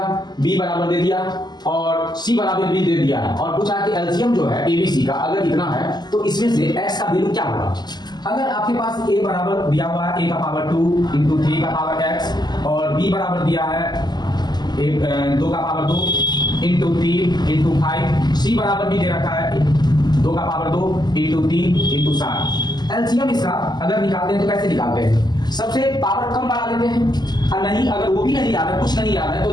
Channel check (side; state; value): right; late; 0.21 ms